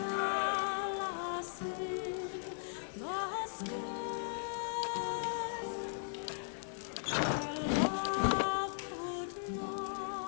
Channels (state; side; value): silent; right; 53 dB below the other